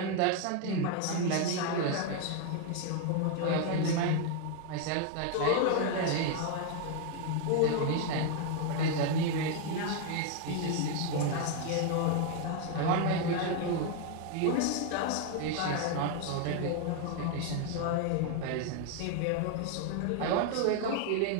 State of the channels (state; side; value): different; both; correlation 0.01